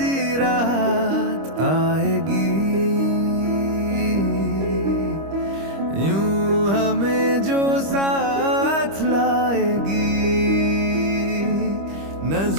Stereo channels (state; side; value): late; left; 25 ms